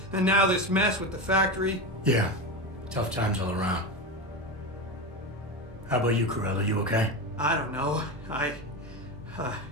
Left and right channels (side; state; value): both; normal; correlation 0.20